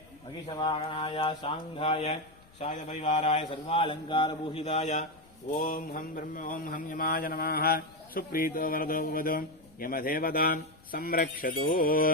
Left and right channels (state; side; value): noise; left; rumble, 27 dB below the sound